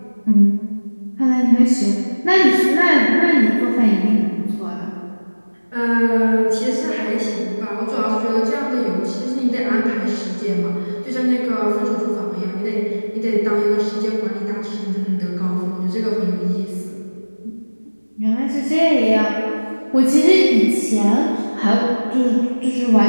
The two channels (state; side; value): inverted; both; correlation -1.00